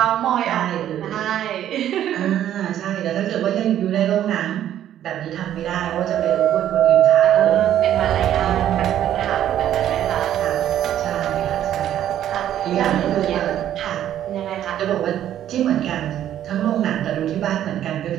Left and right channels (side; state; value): left; quieter; 11.3 dB